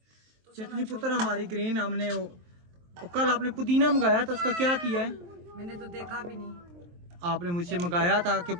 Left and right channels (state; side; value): late; left; 23 ms